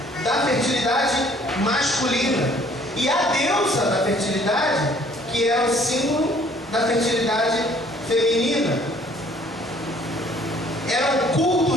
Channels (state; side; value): normal; both; correlation 0.58